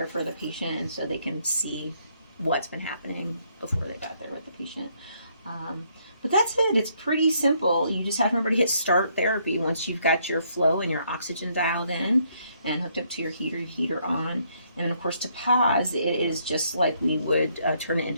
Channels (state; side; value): inverted; both; correlation -0.71